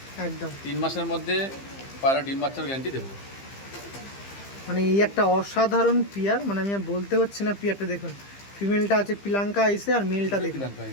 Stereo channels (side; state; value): right; late; 15 ms